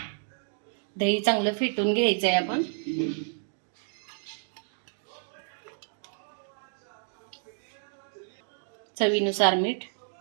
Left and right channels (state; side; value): silent; left; digital silence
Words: दही चांगलं फेटून घ्यायचं आहे आपण. चवीनुसार मीठ.